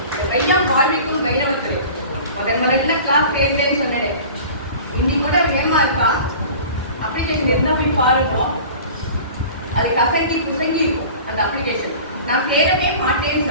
வையம் வாழ்விக்கும் வைணவத்துறை முதல்ல கிளாஸ் சேர்ந்தேன்னு சொன்னேன். இன்னைக்கு கூட வேமா இருக்கா அப்ளிகேஷன் என்ன போய் பாருங்க, அது கசங்கி குசங்கி இருக்கும் அந்த அப்ளிகேஷன். நான் சேரவே மாட்டேன்னு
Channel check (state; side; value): inverted; both; correlation -0.41